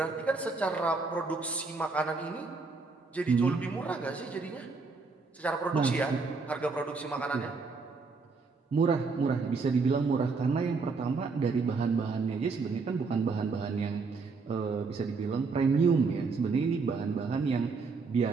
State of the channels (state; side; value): quieter; left; 4.4 dB